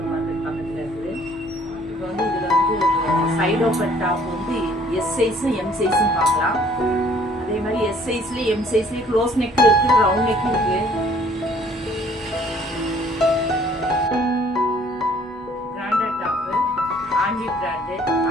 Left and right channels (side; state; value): both; normal; correlation 0.58